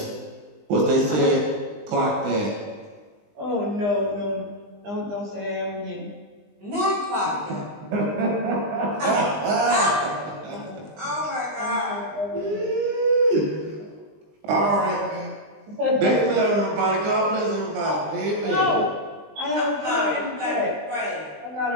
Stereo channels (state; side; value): late; left; 20 ms